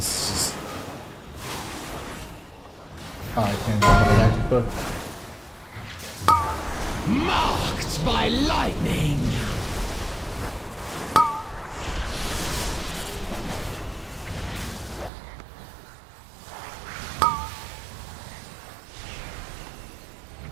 this just... Oh, I can't jump on the magic book. Marked by lightning.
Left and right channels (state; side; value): drops out; left; at 15.1 s